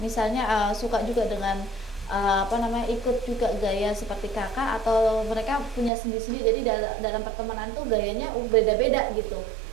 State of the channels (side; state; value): left; drops out; at 5.9 s